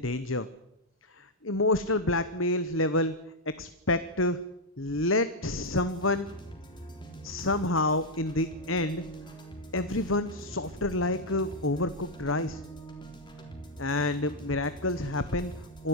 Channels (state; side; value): normal; both; correlation 0.00